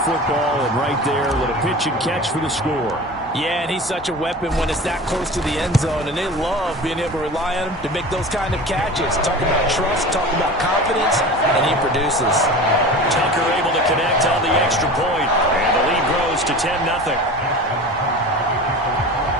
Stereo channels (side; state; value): both; normal; correlation 0.35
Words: football, and right there, a little pitch and catch for the score. Yeah, and he's such a weapon when it's that close to the end zone, and they love being able to rely on him to make those kind of catches. Talk about trust, talk about confidence, and he produces. Tucker able to connect on the extra point, and the lead grows to 10-0.